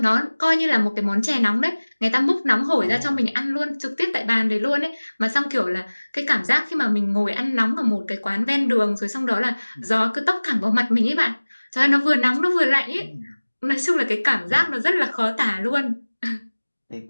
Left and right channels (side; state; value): both; inverted; correlation -1.00